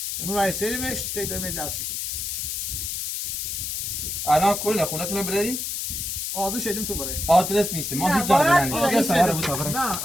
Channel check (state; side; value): noise; left; hiss, 3 dB below the sound